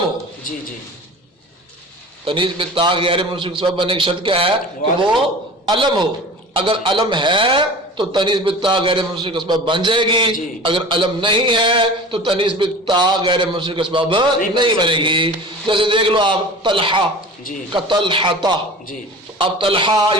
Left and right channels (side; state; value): both; normal; correlation 0.38